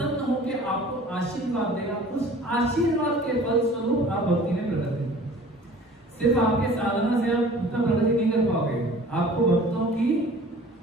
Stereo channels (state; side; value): normal; both; correlation 0.47